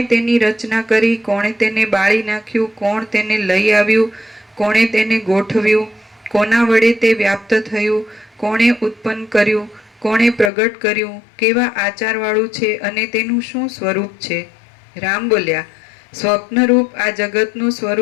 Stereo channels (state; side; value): drops out; right; at 10.5 s